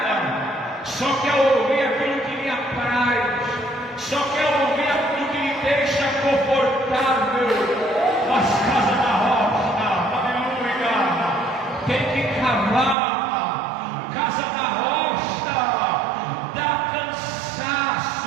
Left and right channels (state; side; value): drops out; left; at 13.0 s